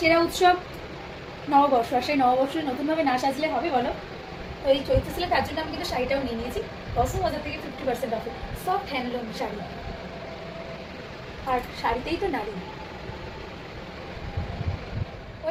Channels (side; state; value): both; identical; correlation 1.00